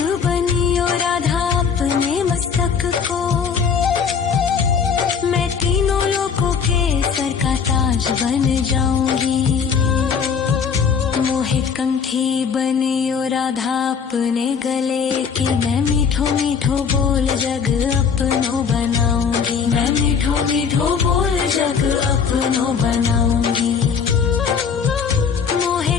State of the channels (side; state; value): right; quieter; 6.5 dB